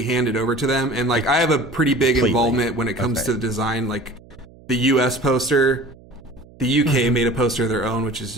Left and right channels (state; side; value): noise; right; hum, 24 dB below the sound